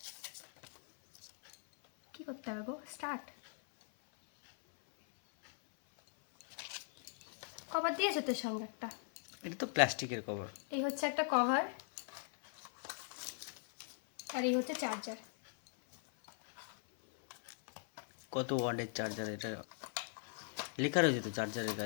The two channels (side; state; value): right; silent; 51 dB below the other